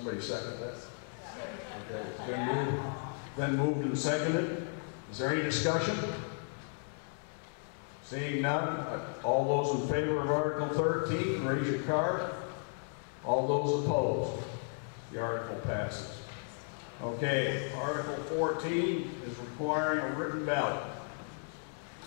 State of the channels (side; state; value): right; silent; 55 dB below the other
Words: second that? Okay, it's been moved and seconded. Is there any discussion? Seeing none, all those in favor of Article 13, raise your card. All those opposed, the article passes. Okay, Article 14 is requiring a written ballot.